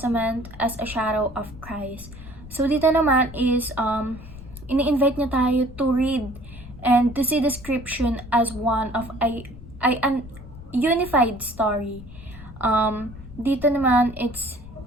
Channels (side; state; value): left; noise; rumble, 16 dB below the sound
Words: as a shadow of Christ. So dito naman is ini-invite niya tayo to read and to see the scripture as one of an unified story. Dito naman, it's